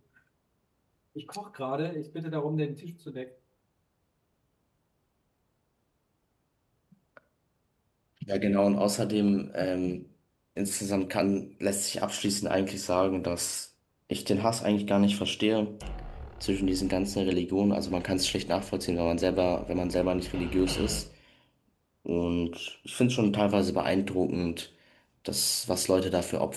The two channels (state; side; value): identical; both; correlation 1.00